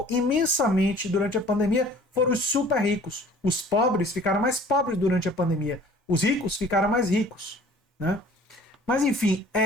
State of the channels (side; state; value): both; normal; correlation 0.50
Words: imensamente durante a pandemia foram os super ricos. Os pobres ficaram mais pobres durante a pandemia. Os ricos ficaram mais ricos. Né? Mas enfim,